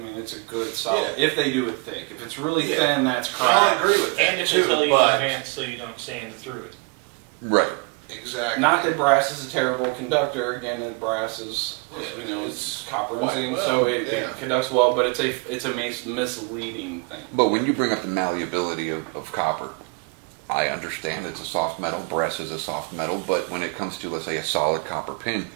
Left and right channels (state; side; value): quieter; left; 30.9 dB